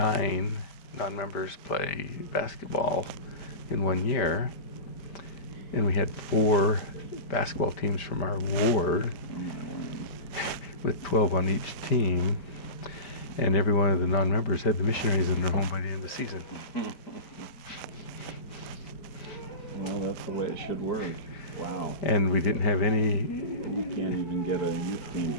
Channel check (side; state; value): right; late; 5.0 ms